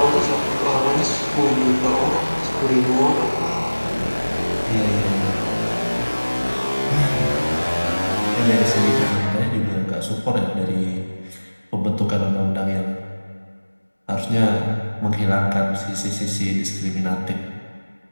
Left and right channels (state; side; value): inverted; both; correlation -1.00